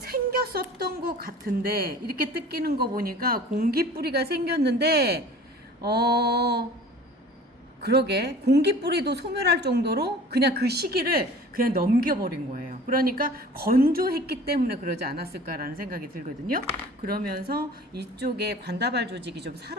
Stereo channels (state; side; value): normal; both; correlation 0.44